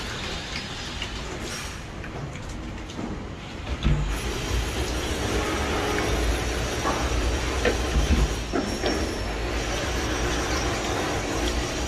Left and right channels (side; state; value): both; identical; correlation 1.00